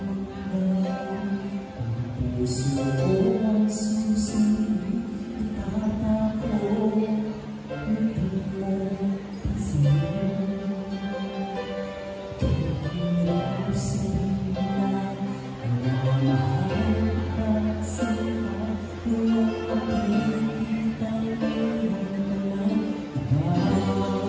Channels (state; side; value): identical; both; correlation 1.00